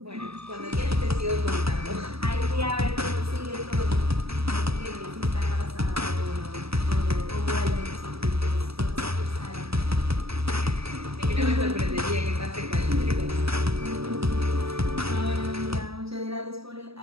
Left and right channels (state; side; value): late; left; 0.77 ms